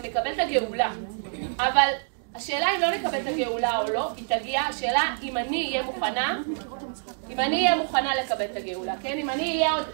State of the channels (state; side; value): silent; left; 59 dB below the other